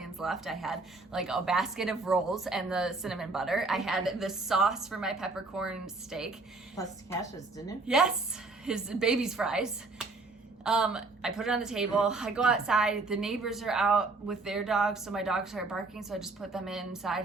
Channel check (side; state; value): left; quieter; 3.6 dB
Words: left. I had like a basket of rolls and the cinnamon butter. I had the sauce for my peppercorn steak. Plus Cash's, didn't it? Yes, his baby's fries. I put it on the table. I go outside. The neighbors are out with their dogs, so my dogs start barking, so I just put them inside